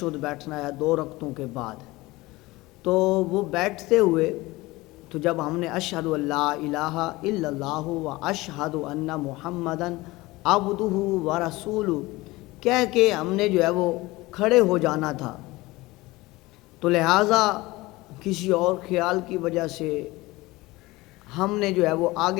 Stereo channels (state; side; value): quieter; right; 20.5 dB